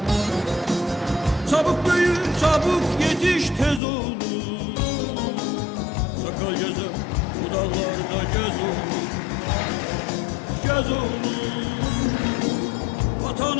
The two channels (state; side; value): drops out; right; at 3.8 s